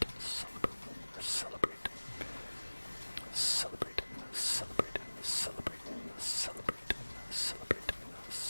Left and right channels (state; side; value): inverted; both; correlation -1.00